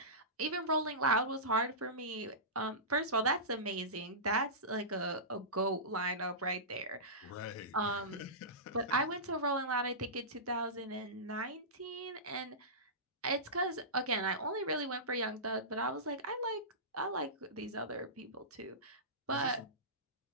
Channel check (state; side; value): normal; both; correlation -0.20